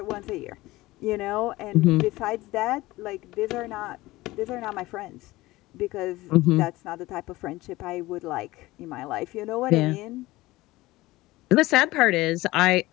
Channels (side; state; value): right; quieter; 18.9 dB